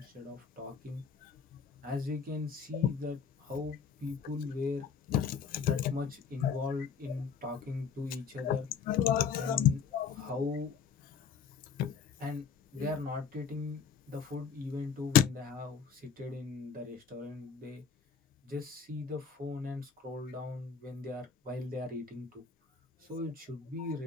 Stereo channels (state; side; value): quieter; right; 6.7 dB